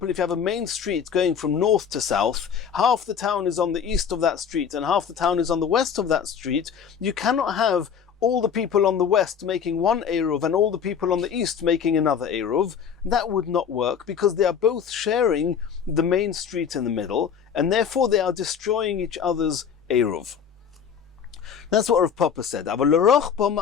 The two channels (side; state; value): right; quieter; 7.3 dB